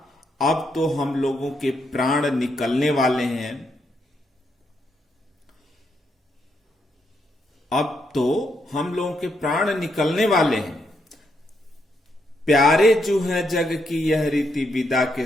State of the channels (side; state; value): both; normal; correlation 0.78